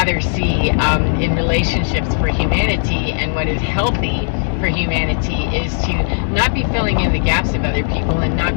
see in relationships for humanity, and what is healthy for humanity, is to not be filling in the gaps of other people and not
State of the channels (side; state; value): right; silent; digital silence